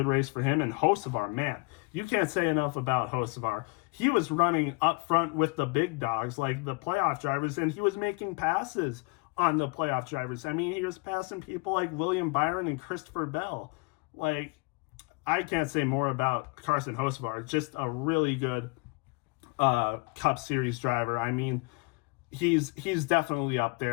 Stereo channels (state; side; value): quieter; right; 29.1 dB